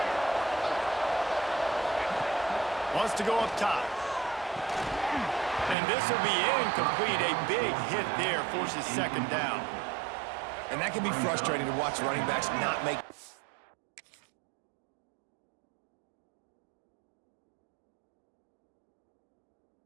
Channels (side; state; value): left; drops out; at 5.8 s